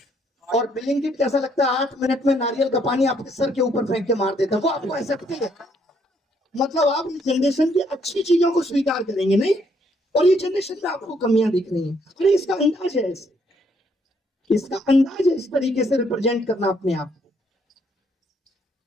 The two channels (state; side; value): normal; both; correlation 0.69